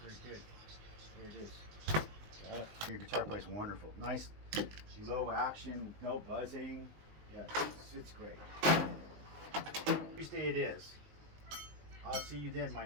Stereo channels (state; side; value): late; left; 19 ms